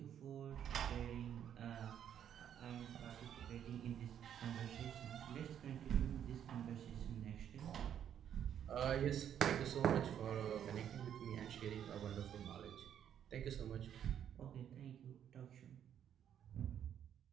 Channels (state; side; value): quieter; left; 9.5 dB